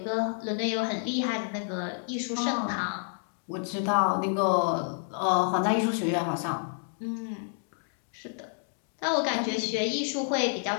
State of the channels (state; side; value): silent; right; digital silence